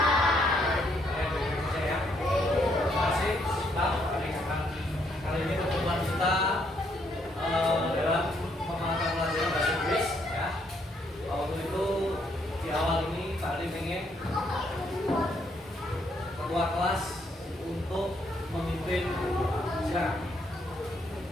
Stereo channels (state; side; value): normal; both; correlation 0.72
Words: Ketua kelas untuk memimpin. Silakan.